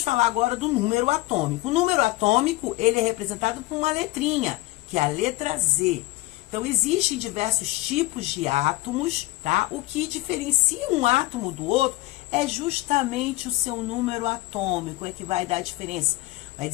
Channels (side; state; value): right; quieter; 19.5 dB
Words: falar agora do número atômico. O número atômico, ele é representado por uma letrinha, que é a letra Z. Então, existem diversos tipos de átomos, tá? O que diferencia um átomo do outro é justamente o seu número atômico, é que vai dar a diferença. Vai